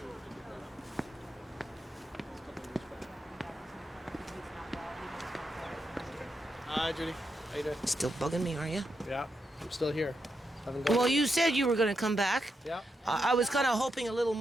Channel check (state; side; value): normal; both; correlation 0.84